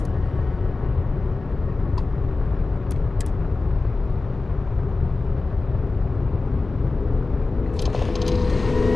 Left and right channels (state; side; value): quieter; right; 3.5 dB